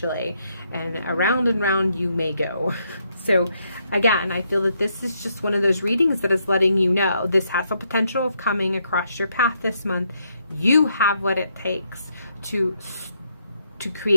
and round you may go. So again, I feel that this is just one of those readings that is letting you know this has the potential of coming across your path this month. You have what it takes to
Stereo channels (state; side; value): inverted; both; correlation -0.76